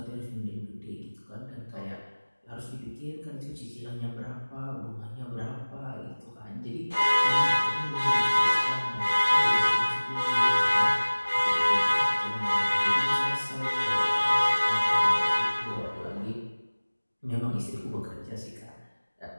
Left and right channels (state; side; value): inverted; both; correlation -1.00